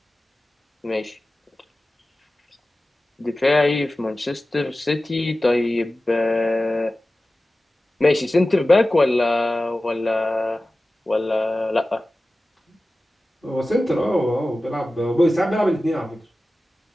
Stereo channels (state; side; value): normal; both; correlation 0.96